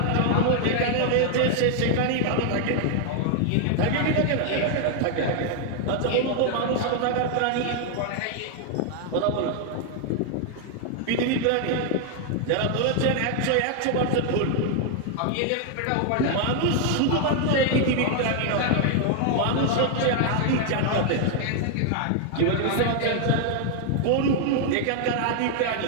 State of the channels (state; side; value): different; both; correlation 0.00